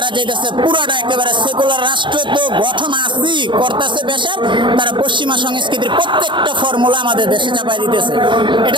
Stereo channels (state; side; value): late; left; 0.23 ms